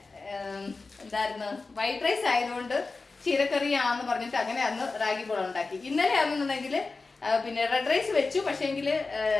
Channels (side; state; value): right; quieter; 3.9 dB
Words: എന്തായിരുന്നു വൈറ്റ് റൈസ് ആയതുകൊണ്ട് ചീരക്കറിയാന്ന് പറഞ്ഞിട്ട് അങ്ങനെ അന്ന് റാഗി ബോൾ ഉണ്ടാക്കി. ഇന്നലെ ആണെന്നുണ്ടെങ്കിൽ പിന്നെ റെഡ് റൈസ് വെച്ചു. പക്ഷേങ്കിൽ